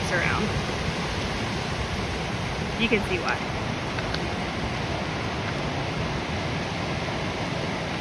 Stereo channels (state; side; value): identical; both; correlation 1.00